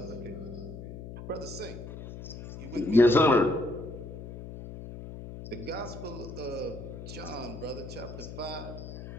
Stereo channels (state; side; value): noise; left; hum, 11 dB below the sound